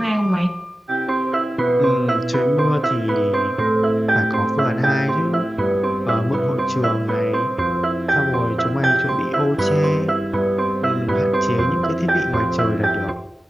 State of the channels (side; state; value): both; normal; correlation 0.95